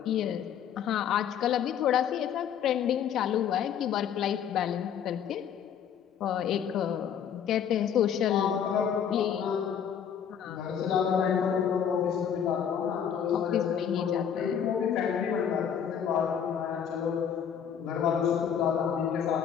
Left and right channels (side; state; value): right; quieter; 8.4 dB